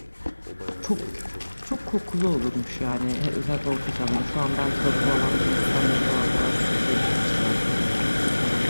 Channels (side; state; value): both; inverted; correlation -1.00